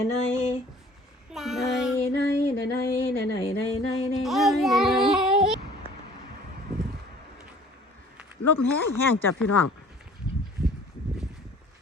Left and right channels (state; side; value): normal; both; correlation 0.51